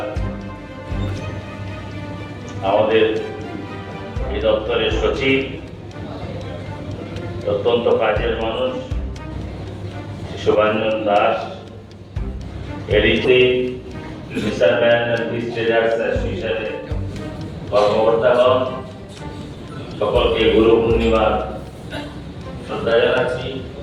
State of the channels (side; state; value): both; identical; correlation 1.00